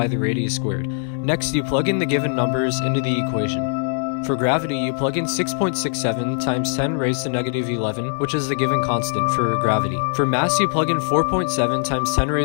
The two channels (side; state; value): right; silent; digital silence